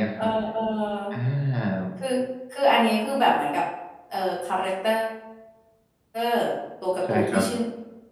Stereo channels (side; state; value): both; identical; correlation 1.00